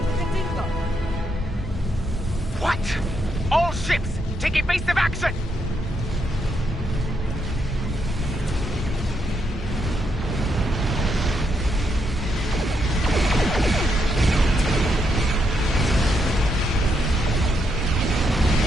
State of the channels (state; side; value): normal; both; correlation 0.79